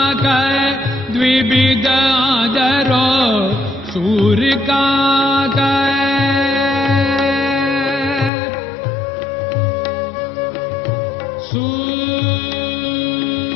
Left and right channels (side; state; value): right; drops out; at 8.3 s